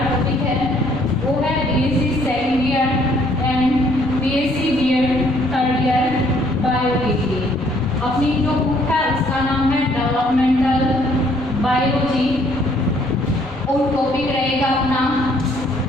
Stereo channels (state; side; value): normal; both; correlation 0.64